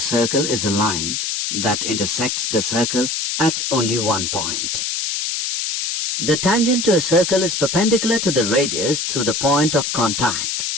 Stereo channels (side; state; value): left; noise; hiss, 1 dB below the sound